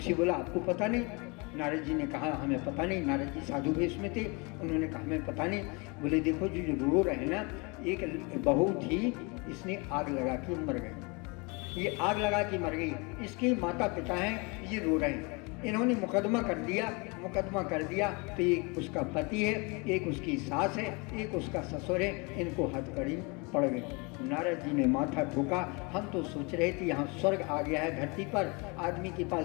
बोला आपको पता नहीं? नारद जी ने कहा हमें पता नहीं। नारद जी साधु वेश में थे, उन्होंने कहा हमें पता नहीं। बोले देखो जो रो रहे हैं ना, एक बहू थी, इसने आग लगा के मर गई, ये आग लगा के मर गई, इसके माता पिता हैं, ये रो रहे हैं। इन्होंने मुकदमा कर दिया तो एक उसका पति है, एक उसकी सास है, एक उसका ससुर है, इनको हथकड़ी पड़ गई। नारद जी ने माथा ठोका, हम तो सोच रहे थे यहाँ स्वर्ग आ गया है धरती पर, आदमी के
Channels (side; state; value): right; quieter; 29.6 dB